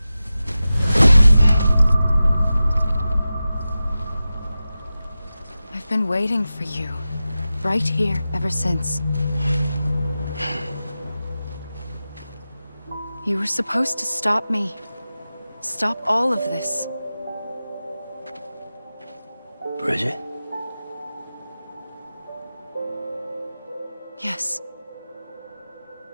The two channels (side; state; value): both; inverted; correlation -0.94